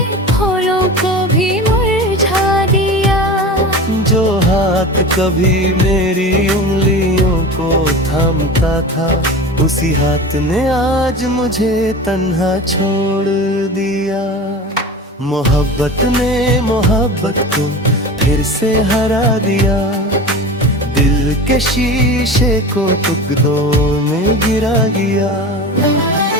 फूलों को भी मुरझा दिया। जो हाथ कभी मेरी उंगलियों को थामता था, उसी हाथ ने आज मुझे तन्हा छोड़ दिया। मोहब्बत ने मोहब्बत को फिर से हरा दिया, दिल के शीशे को टुकड़ों में गिरा दिया।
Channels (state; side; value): normal; both; correlation 0.32